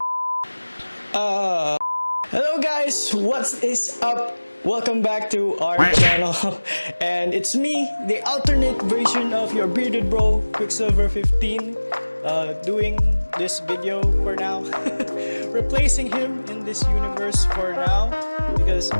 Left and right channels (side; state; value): both; inverted; correlation -1.00